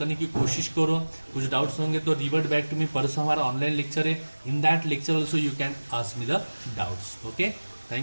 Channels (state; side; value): inverted; both; correlation -1.00